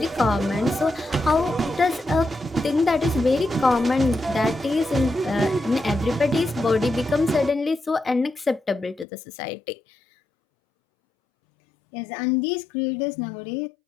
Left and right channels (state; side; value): drops out; right; at 9.1 s